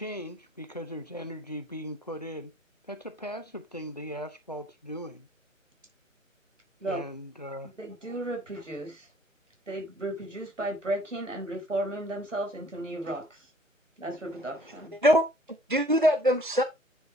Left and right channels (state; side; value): normal; both; correlation 0.56